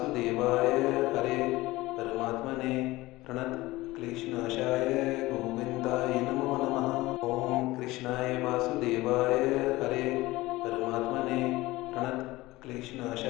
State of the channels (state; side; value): quieter; right; 19.2 dB